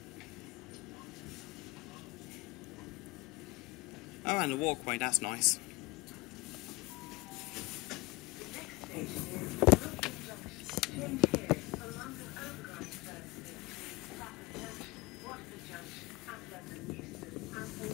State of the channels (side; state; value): right; quieter; 21.9 dB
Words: Oh, and a walkway, that's nice. Change here for London Overground services, Clapham Junction, Willesden Junction and London Euston, and for